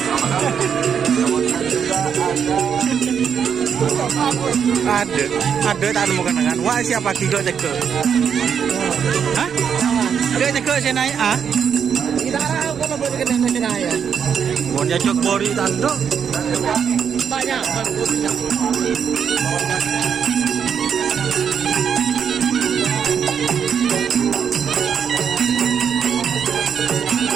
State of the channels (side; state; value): left; quieter; 7.5 dB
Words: kemudian juga ada tak nemu kenangan. Wah siapa tiga cek? Hah? Dia cek saya naik ah? Tidak ada kalau boleh kena nasional ya. Mau jajak bori tando? Banyak.